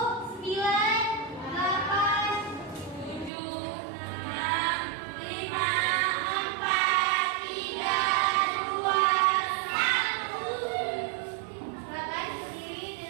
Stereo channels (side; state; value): left; drops out; at 3.3 s